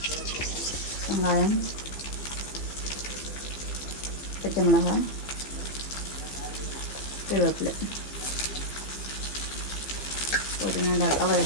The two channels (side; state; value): right; late; 15 ms